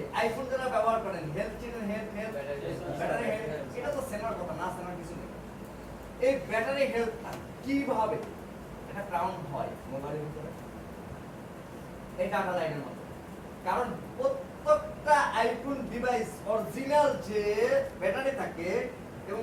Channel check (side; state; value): both; identical; correlation 1.00